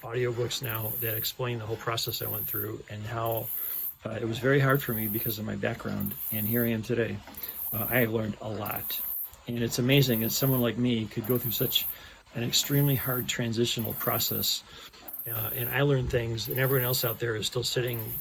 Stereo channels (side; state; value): both; identical; correlation 1.00